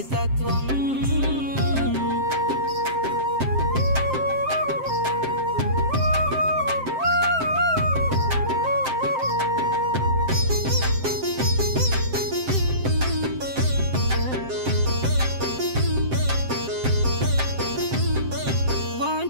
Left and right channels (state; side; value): late; left; 7.6 ms